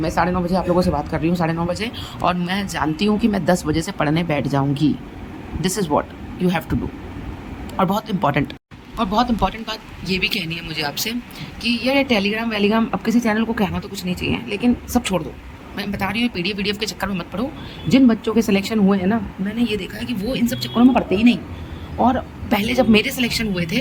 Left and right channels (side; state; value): both; identical; correlation 1.00